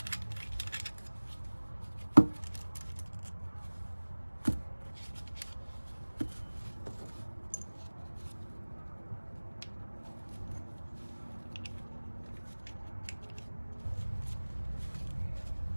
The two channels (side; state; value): both; inverted; correlation -1.00